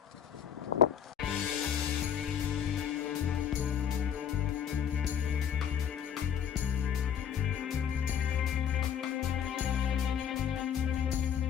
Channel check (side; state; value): right; quieter; 8.6 dB